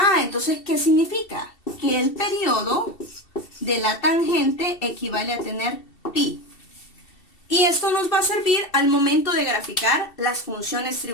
Entonces, ¿qué significa? Que el periodo de la tangente equivale a tener pi. Y esto nos va a servir al momento de graficar las funciones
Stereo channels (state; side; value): late; right; 2.7 ms